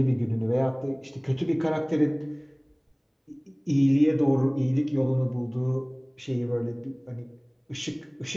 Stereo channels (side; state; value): both; identical; correlation 1.00